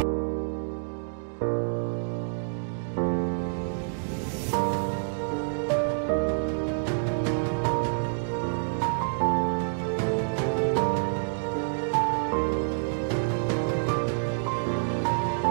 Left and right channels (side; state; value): left; silent; digital silence